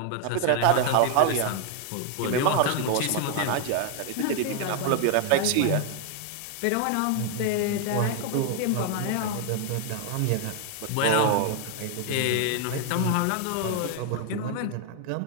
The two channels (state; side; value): different; both; correlation 0.01